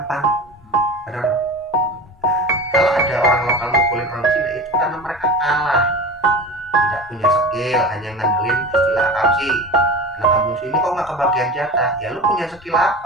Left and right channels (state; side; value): normal; both; correlation 0.32